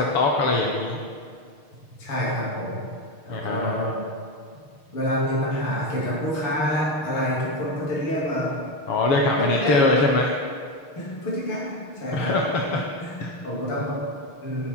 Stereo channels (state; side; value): late; right; 6.5 ms